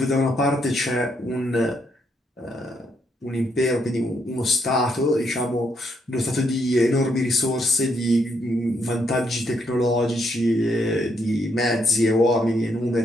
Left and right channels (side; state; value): both; normal; correlation 0.75